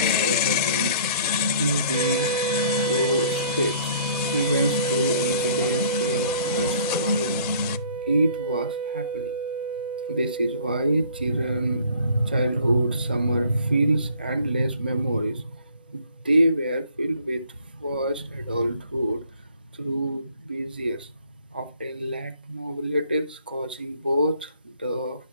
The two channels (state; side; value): inverted; both; correlation -0.55